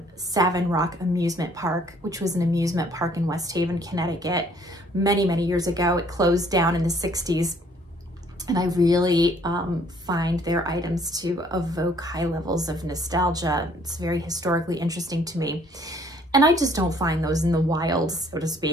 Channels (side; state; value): both; normal; correlation 0.61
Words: Savin Rock Amusement Park, which was an amusement park in West Haven, Connecticut, many, many years ago. It closed down in the 60s. And I really find their items to evoke high levels of nostalgia. It's very historically interesting to me. And I just don't find those in the wild, so to